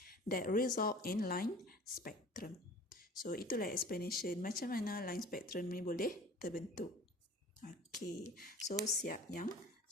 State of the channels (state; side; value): normal; both; correlation 0.44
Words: That result in line spectrum. So, itulah explanation macam mana line spectrum ni boleh terbentuk. Okey, so siap yang